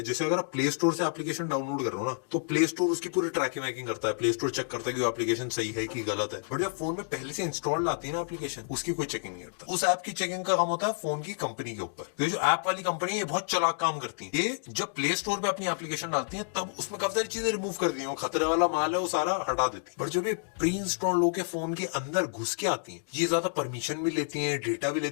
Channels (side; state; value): right; silent; digital silence